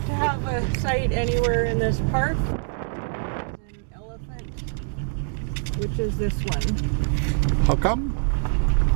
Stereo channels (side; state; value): left; silent; 62 dB below the other